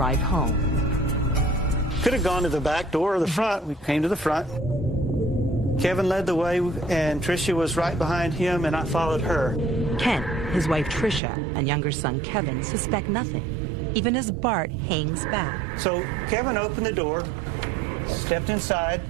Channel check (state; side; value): drops out; left; at 11.2 s